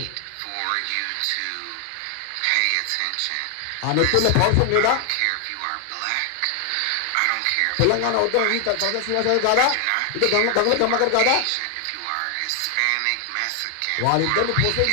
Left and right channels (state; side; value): different; both; correlation 0.00